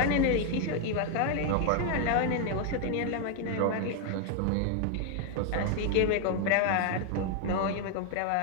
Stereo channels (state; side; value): different; both; correlation 0.00